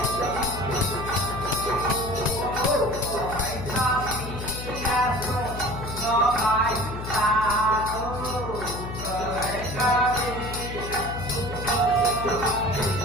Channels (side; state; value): left; noise; hum, 8 dB below the sound